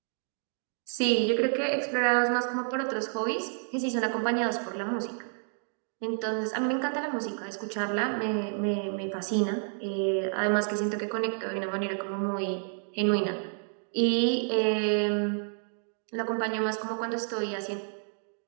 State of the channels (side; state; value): left; silent; 58 dB below the other